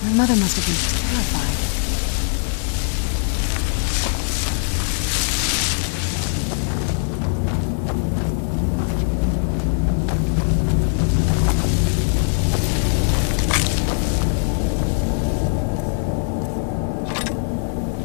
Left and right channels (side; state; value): right; silent; digital silence